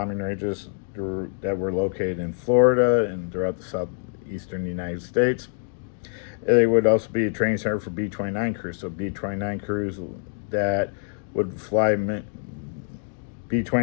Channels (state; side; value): silent; right; 62 dB below the other